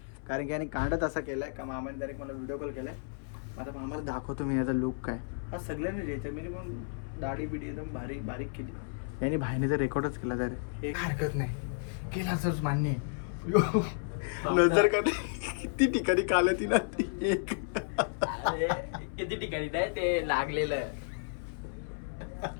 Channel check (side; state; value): right; silent; 56 dB below the other